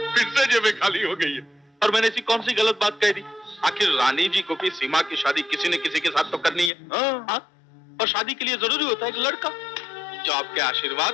से जेबें खाली हो गई है। और मैंने ऐसी कौन सी गलत बात कह दी? आखिर रानी जी को भी सीमा की शादी किसी न किसी के साथ तो करनी है। और शादी के लिए जरूरी होता है एक लड़का, जो आपके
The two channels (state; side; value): drops out; right; at 6.7 s